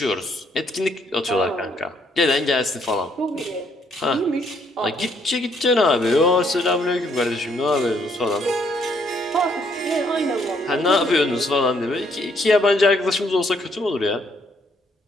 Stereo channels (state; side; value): normal; both; correlation 0.69